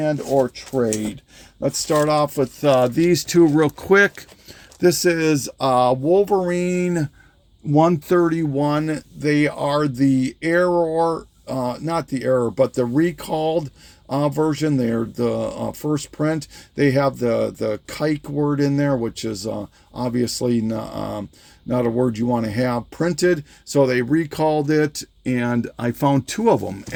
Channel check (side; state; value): both; identical; correlation 1.00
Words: or trade. Let's start off with these two real quick. This is Wolverine 131. They are the error, not the error, but the recalled version. They're the first print. They have the kike word in there, which is obviously not a word you want to have printed. So they recalled it, and I found 2 of them